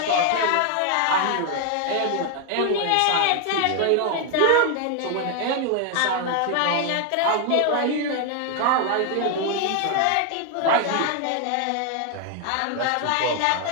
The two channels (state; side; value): different; both; correlation 0.00